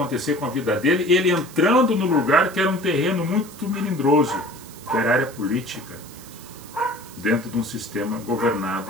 com a vida dele, ele entrando no lugar que era um terreno muito melindroso, que era a área política, dentro de um sistema governado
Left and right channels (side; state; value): right; noise; hiss, 19 dB below the sound